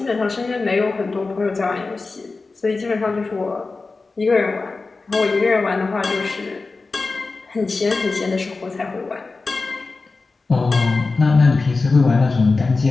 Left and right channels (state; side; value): quieter; right; 3.9 dB